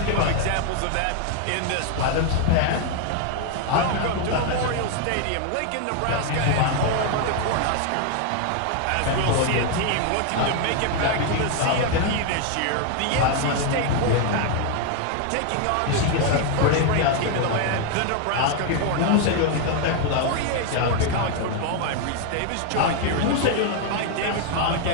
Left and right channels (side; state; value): both; different; correlation 0.01